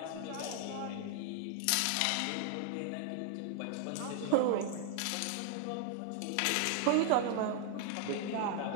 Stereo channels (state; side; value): different; both; correlation 0.00